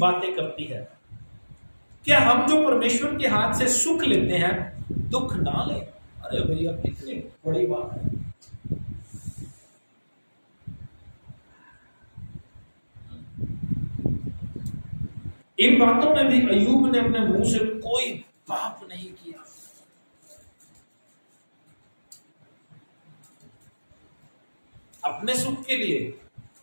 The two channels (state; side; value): inverted; both; correlation -1.00